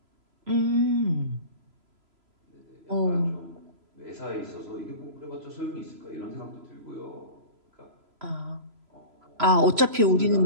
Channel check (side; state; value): left; late; 3.0 ms